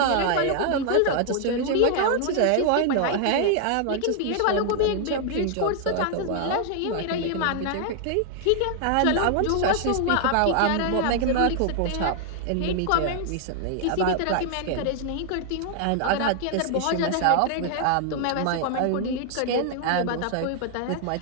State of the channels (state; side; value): different; both; correlation 0.00